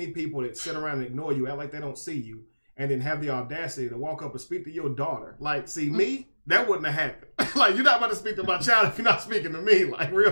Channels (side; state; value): both; inverted; correlation -1.00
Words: people that sit around and ignore you, act like they don't see you, and then have the audacity to walk up and speak to your daughter. Like, see, me, that wouldn't have happened. Like, you're not about to speak to my child if you're not speaking to me. Like,